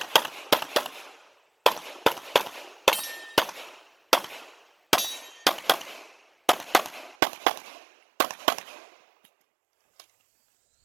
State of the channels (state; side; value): drops out; left; at 7.2 s